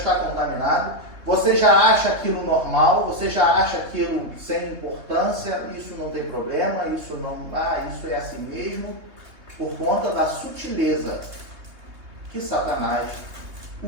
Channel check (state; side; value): late; left; 3.2 ms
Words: contaminada, você já acha aquilo normal, você já acha aquilo sem importância, isso não tem problema, isso é assim mesmo, por conta da sutileza que Satanás